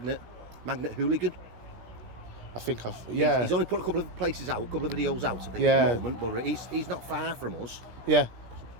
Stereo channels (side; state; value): left; late; 17 ms